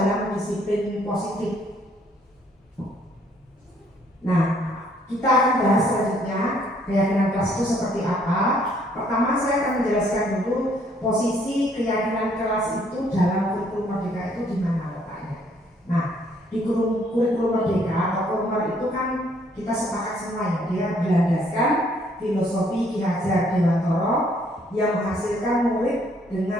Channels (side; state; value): both; normal; correlation 0.65